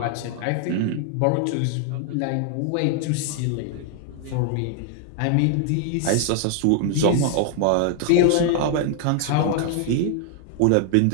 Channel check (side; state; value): both; different; correlation 0.00